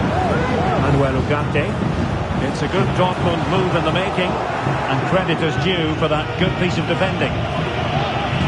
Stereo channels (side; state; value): both; identical; correlation 1.00